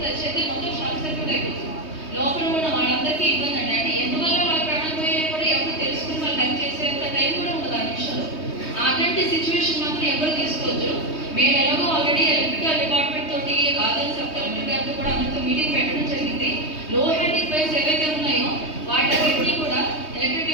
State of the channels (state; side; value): late; right; 3.2 ms